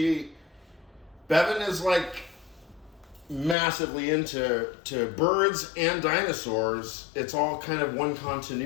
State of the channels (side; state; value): right; drops out; at 3.6 s